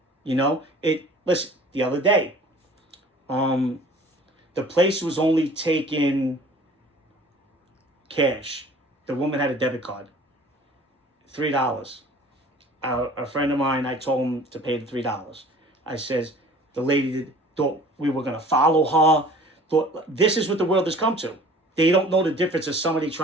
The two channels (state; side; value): normal; both; correlation 0.48